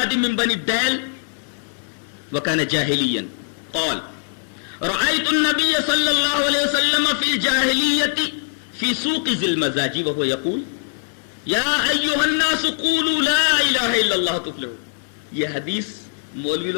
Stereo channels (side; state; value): right; silent; 58 dB below the other